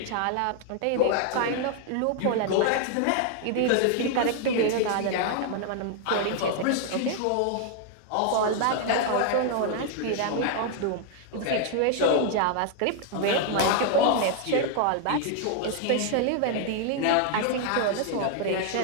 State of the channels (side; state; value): both; different; correlation 0.00